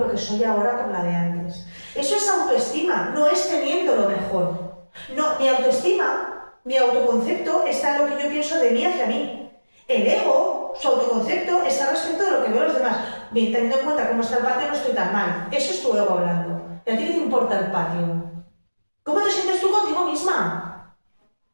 que soy ahora por la de antes. Eso es autoestima, no es teniendo lo mejor. No, mi autoestima, mi autoconcepto está en lo que yo pienso de mí hacia mí. El ego, su autoconcepto, está respecto de lo que veo los demás. Bien, teniendo en cuenta cómo está el patio, no estoy tan mal. Eso es tu ego hablando. ¿Y a ti qué te importa el patio? ¿Cómo te sientes tú contigo misma?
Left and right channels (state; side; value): inverted; both; correlation -1.00